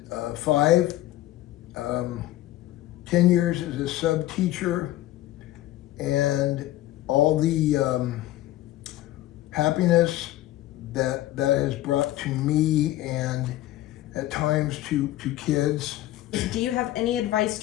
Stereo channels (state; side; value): quieter; right; 15.2 dB